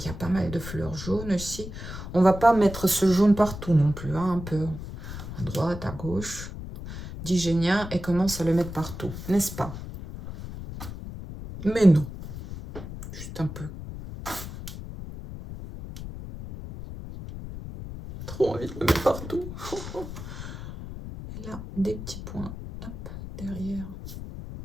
pas mal de fleurs jaunes aussi. On va pas mettre ce jaune partout non plus, hein, un peu à droite, à gauche. Digénien et commence à le mettre partout, n'est-ce pas? Mais non, juste un peu. Trop envie de le mettre partout. Et là, des petits points, hop, derrière.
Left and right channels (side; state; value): left; noise; rumble, 10 dB below the sound